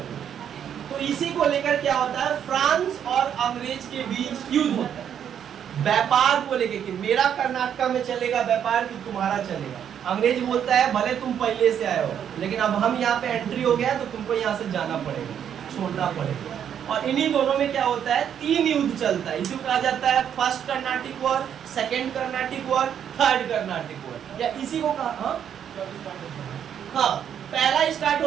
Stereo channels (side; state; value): left; quieter; 8.9 dB